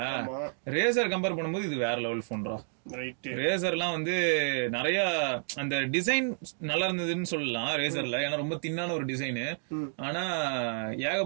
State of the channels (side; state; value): left; silent; digital silence